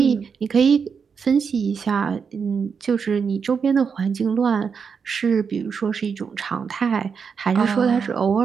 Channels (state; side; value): quieter; left; 6.1 dB